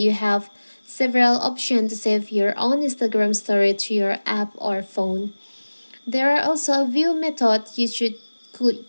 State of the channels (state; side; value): inverted; both; correlation -1.00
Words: have several options to save your own Instagram story to your app or phone. There are also a view method you could